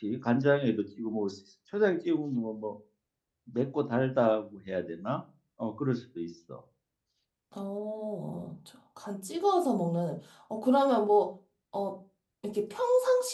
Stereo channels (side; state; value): both; identical; correlation 1.00